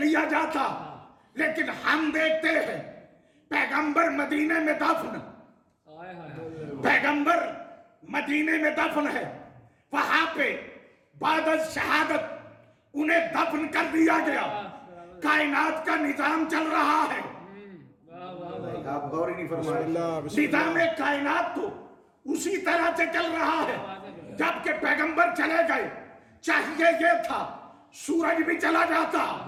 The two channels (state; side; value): identical; both; correlation 1.00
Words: जाता। लेकिन हम देखते हैं पैगंबर मदीने में दफन, पैगंबर मदीने में दफन है, वहां पे बाद शहादत उन्हें दफन कर दिया गया। कायनात का निजाम चल रहा है, आप गौर ही नहीं फरमाए। निजाम कायनात तो उसी तरह से चल रहा है। जबकि पैगंबर चले गए, चाहिए ये था सूरज भी चला जाता,